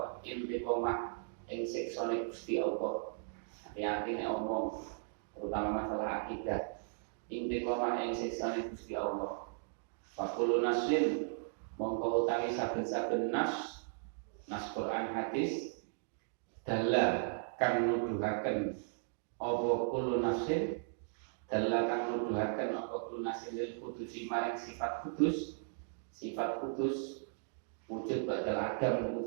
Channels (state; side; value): silent; left; digital silence